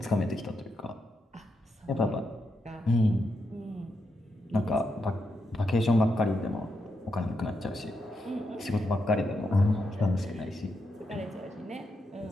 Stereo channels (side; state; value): both; normal; correlation 0.84